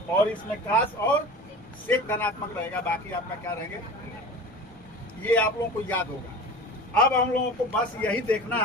और इसमें cos और सेक धनात्मक रहेगा, बाकी आपका क्या रहेंगे? ये आप लोगों को याद होगा। अब हम लोगों को बस यही देखना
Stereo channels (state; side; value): normal; both; correlation 0.36